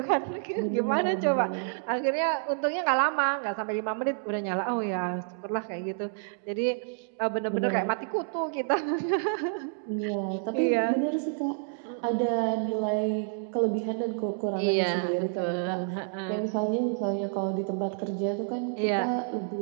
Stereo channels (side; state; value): left; silent; digital silence